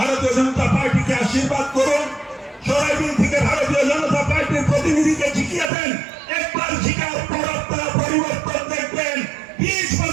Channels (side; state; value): left; drops out; at 5.7 s